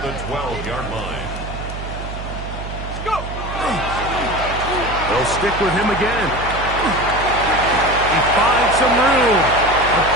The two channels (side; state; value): right; noise; hum, 8 dB below the sound